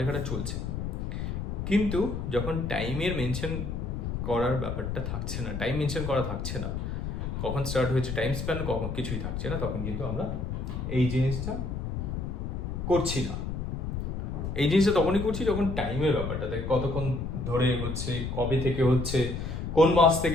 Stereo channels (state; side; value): noise; left; rumble, 4 dB below the sound